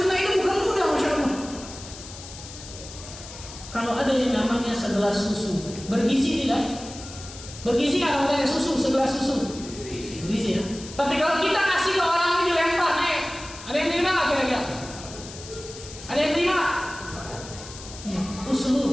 ini bukan mudah, masya Allah. Kalau ada yang namanya segelas susu, bergizi tidak? Bergizi nggak namanya susu, segelas susu? Bergizi ya. Tapi kalau kita kasih ke orang ini dilempar, ada yang terima nggak kira-kira? Ada yang terima? Ya,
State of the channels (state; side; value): noise; left; hiss, 14 dB below the sound